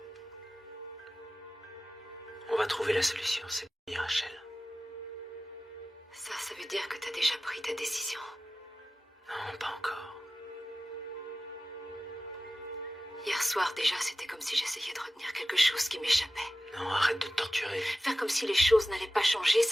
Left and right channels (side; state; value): both; normal; correlation 0.95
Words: On va trouver la solution, c'est bien, Rachel. Ça veut dire que t'as déjà pris ta décision. Non, pas encore. Hier soir, déjà, c'était comme si j'essayais de retenir quelque chose qui m'échappait. Non, arrête de te torturer. Faire comme si les choses n'allaient pas changer,